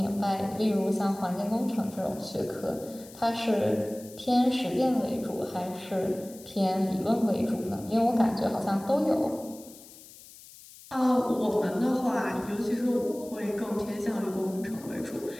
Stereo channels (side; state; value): left; noise; hiss, 20 dB below the sound